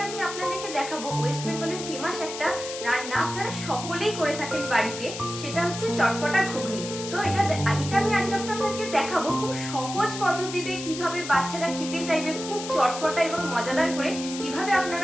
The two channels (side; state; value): left; noise; hiss, 9 dB below the sound